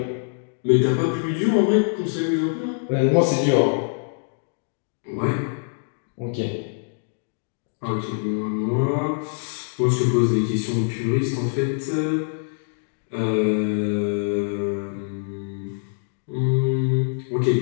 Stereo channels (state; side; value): silent; right; digital silence